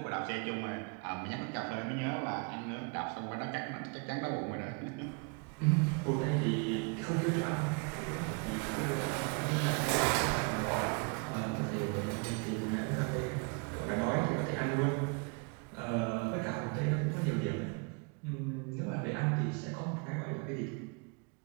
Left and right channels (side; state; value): left; quieter; 34.5 dB